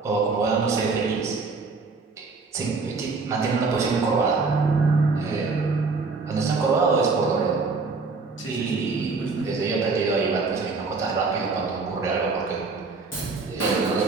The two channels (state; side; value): quieter; left; 4.3 dB